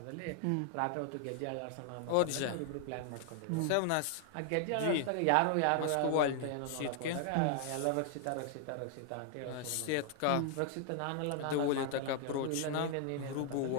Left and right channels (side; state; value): both; different; correlation 0.00